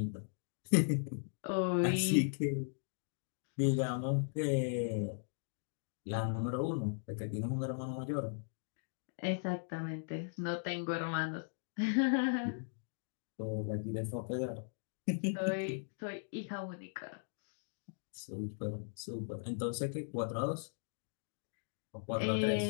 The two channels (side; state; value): right; silent; digital silence